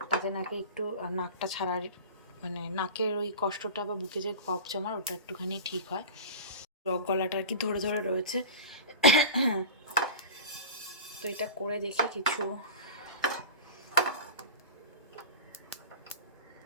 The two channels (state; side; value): inverted; both; correlation -0.32